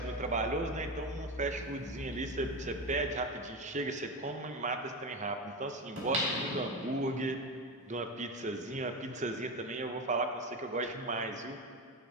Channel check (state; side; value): normal; both; correlation 0.19